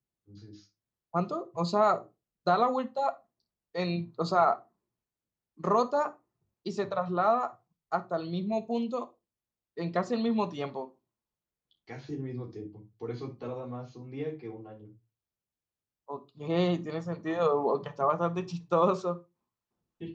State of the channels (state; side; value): identical; both; correlation 1.00